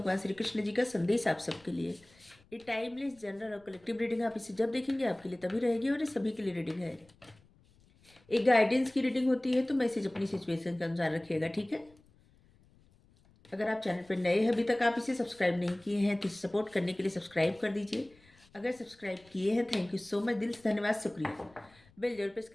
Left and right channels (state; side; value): noise; left; rumble, 29 dB below the sound